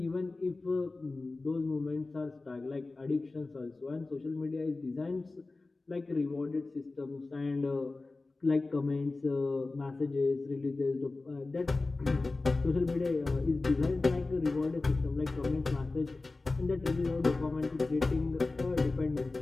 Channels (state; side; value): quieter; right; 3.4 dB